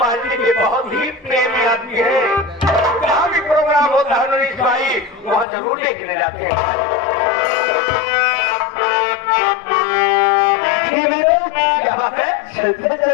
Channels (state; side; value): drops out; right; at 5.5 s